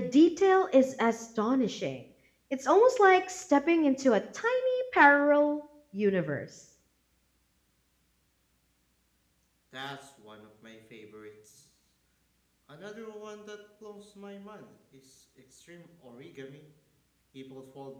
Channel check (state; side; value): identical; both; correlation 1.00